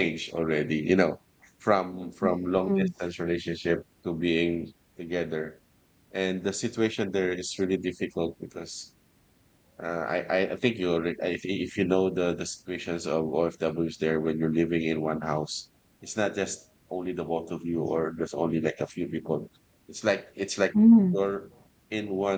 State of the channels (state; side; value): identical; both; correlation 1.00